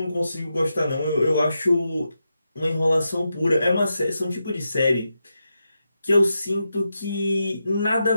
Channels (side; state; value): both; inverted; correlation -0.87